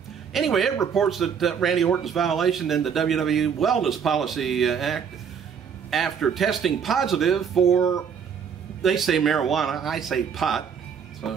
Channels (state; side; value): quieter; left; 7.1 dB